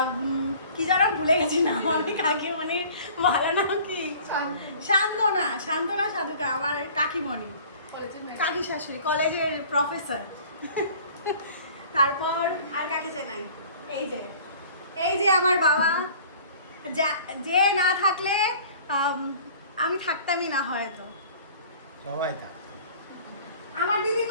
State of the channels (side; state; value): both; inverted; correlation -0.48